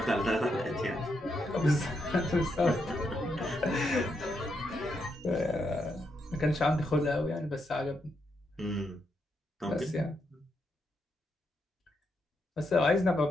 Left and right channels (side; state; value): both; normal; correlation 0.81